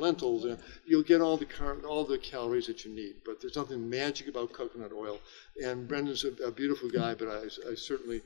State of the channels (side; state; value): right; silent; digital silence